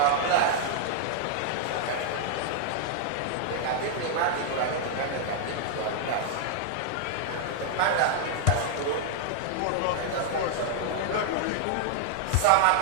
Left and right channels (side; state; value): both; different; correlation 0.00